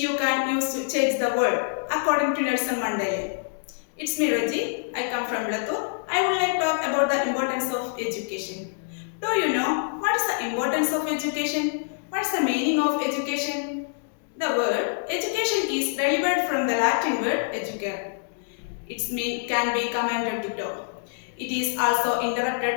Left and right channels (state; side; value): silent; right; digital silence